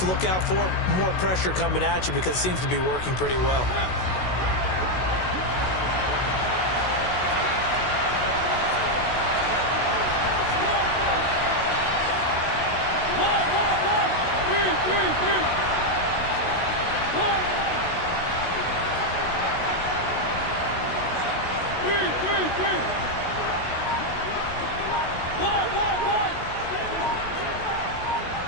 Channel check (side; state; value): right; late; 16 ms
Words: look out for? More pressure coming at you because it seems to be working pretty well.